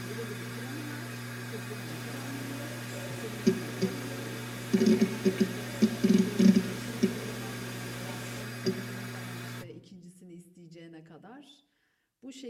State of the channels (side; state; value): both; identical; correlation 1.00